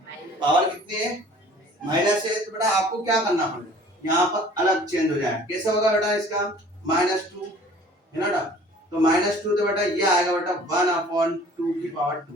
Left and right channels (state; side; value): normal; both; correlation 0.50